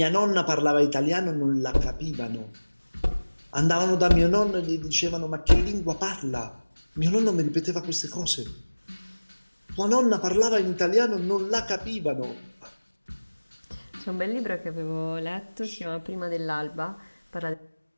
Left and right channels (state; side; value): inverted; both; correlation -1.00